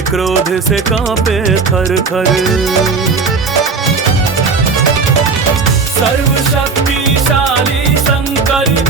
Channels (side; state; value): left; quieter; 4.6 dB